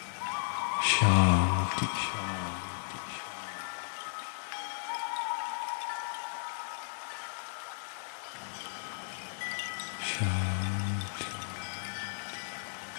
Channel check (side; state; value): right; silent; digital silence